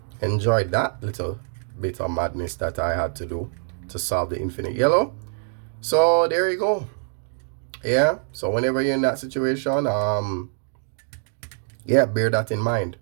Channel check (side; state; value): left; silent; 62 dB below the other